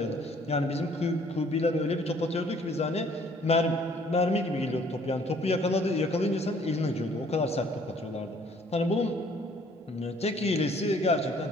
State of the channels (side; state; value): both; normal; correlation 0.59